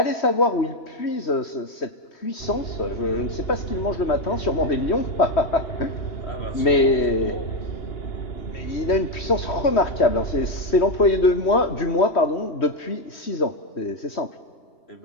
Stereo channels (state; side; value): late; right; 3.1 ms